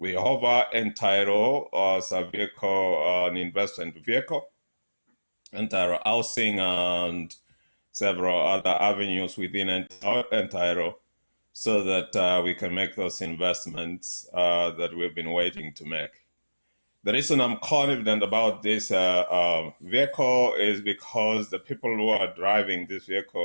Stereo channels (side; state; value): both; inverted; correlation -1.00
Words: We offer Entaero as a vehicle, an investment vehicle, Entaero housing and several other avenues within Entaero, so that we can make those investments that we've been waiting to make. The reason I'm confident about this vehicle is because the people who are driving this